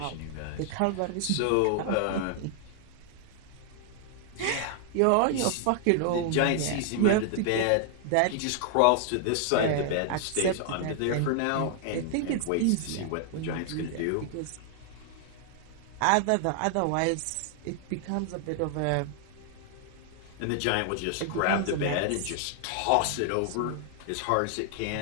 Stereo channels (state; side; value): different; both; correlation 0.00